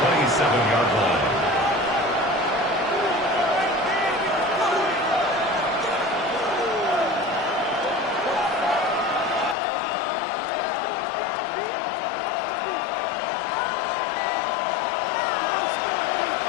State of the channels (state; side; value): drops out; right; at 9.6 s